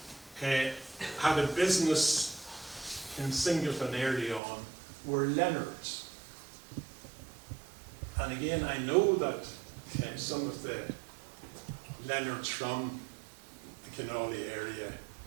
had a business in Singleton early on were Leonards. And again, I know that some of the Leonards from the Kinawley area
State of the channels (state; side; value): drops out; left; at 4.4 s